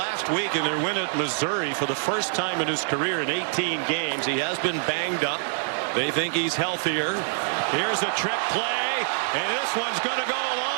week in their win at Missouri for the first time in his career in 18 games. He has been banged up. They think he's healthier. Here's a trick play, and this one's going to go a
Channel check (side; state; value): left; silent; digital silence